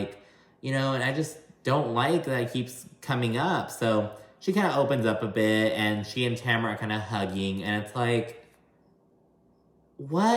you know, and I just don't like that it keeps coming up. So she kind of opens up a bit, and she and Tamara are kind of hugging, and it's like,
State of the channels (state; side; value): identical; both; correlation 1.00